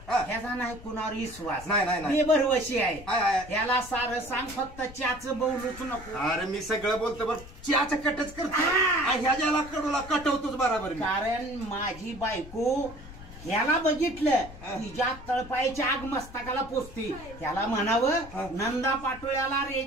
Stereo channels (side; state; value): left; noise; rumble, 16 dB below the sound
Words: ह्याचा नाही कुणावर विश्वास नाही. बेभरवशी आहे. ह्याला सारं सांग, फक्त चहाचं बोलूच नको. अरे मी सगळं बोलतो बरं, चहाचं कटच करतो. ह्याला कडूला कटवतोच बरोबर. कारण माझी बायको ह्याला बघितलं तिच्या तळपायच्या आग मस्तकाला पोचते. त्याला म्हणावं नंदा पाटोळ्याला